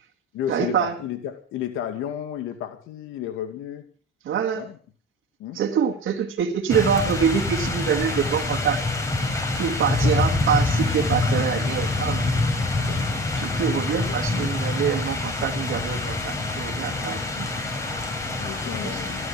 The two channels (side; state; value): both; normal; correlation 0.35